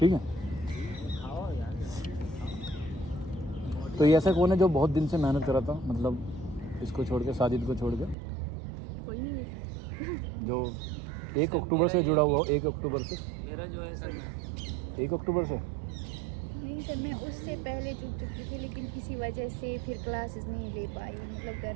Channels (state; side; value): drops out; left; at 8.2 s